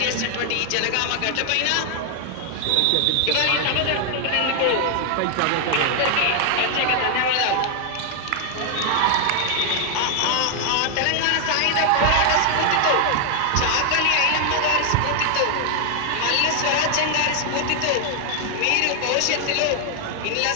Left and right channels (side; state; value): both; different; correlation 0.00